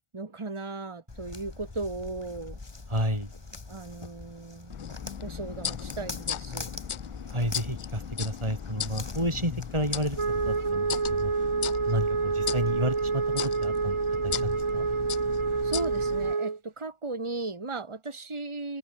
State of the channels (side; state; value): left; late; 1.4 ms